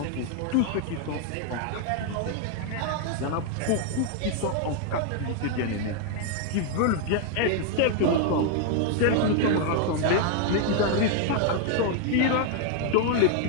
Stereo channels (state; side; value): different; both; correlation 0.00